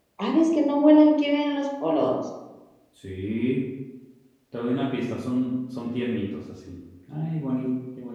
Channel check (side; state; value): both; identical; correlation 1.00